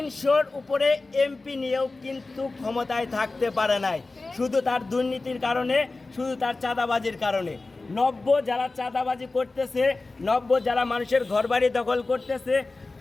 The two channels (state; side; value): quieter; right; 3.4 dB